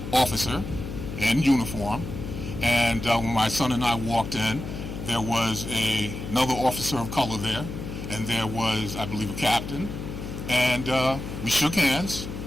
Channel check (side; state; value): left; noise; hum, 8 dB below the sound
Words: officer in uniform. And when my son and I walked in, there was another officer of color there, and there was, I believe, a captain. And we shook hands,